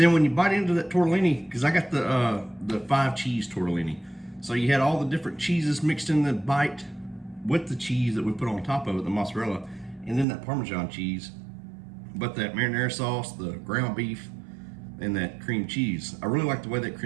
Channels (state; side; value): drops out; left; at 10.2 s